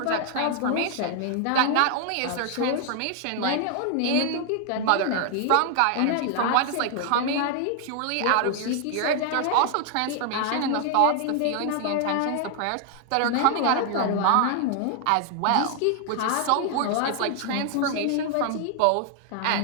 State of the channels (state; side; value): different; both; correlation 0.00